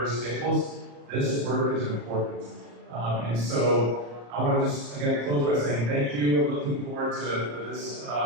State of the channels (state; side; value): late; left; 34 ms